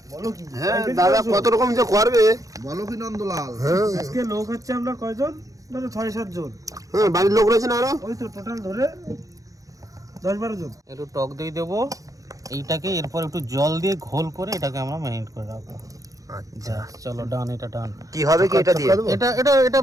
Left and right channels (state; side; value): late; left; 0.17 ms